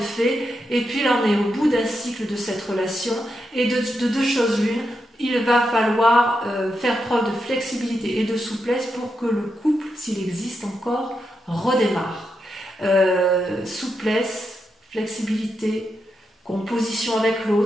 et puis là on est au bout d'un cycle de cette relation, et de 2 choses l'une, il va falloir faire preuve de flexibilité et de souplesse pour que le couple, s'il existe encore, redémarre. Souplesse, flexibilité, composition avec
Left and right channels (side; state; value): both; normal; correlation 0.85